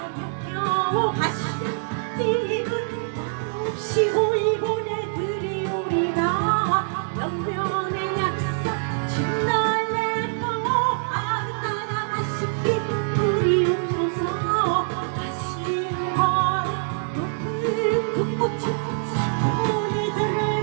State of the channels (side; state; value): left; silent; digital silence